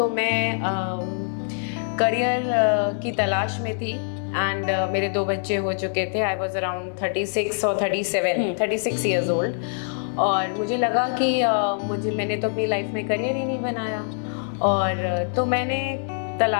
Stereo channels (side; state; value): right; silent; digital silence